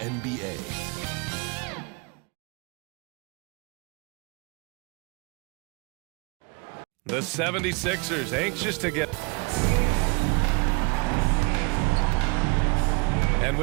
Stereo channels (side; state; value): left; quieter; 30.8 dB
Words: The 76ers anxious to get... And